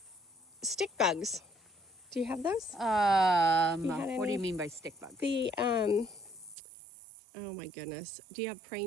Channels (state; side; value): drops out; left; at 6.6 s